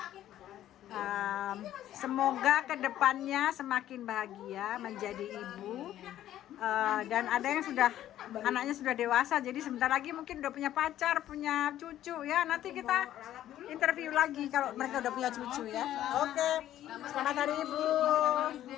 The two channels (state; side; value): quieter; right; 12.4 dB